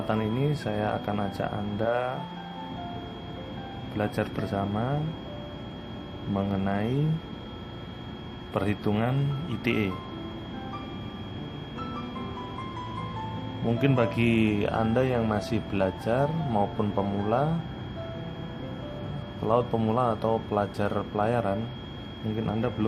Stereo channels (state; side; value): identical; both; correlation 1.00